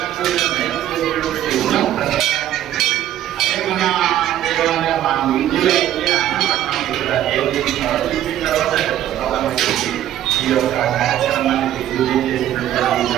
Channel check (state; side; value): quieter; left; 12.1 dB